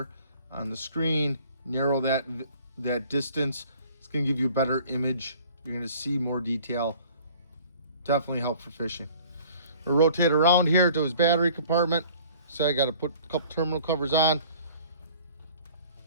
on the screen. Narrow that distance. It's going to give you a better image. You're going to see more detail. Definitely help for fishing. We'll rotate around here to his battery compartment. So I got to put a couple terminal covers on.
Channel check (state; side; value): inverted; both; correlation -0.51